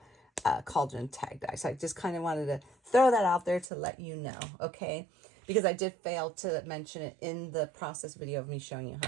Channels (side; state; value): left; drops out; at 3.7 s